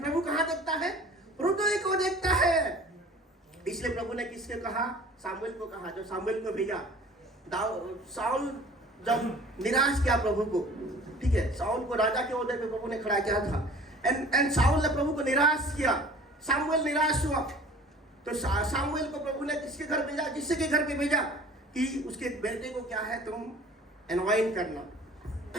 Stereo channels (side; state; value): both; normal; correlation 0.46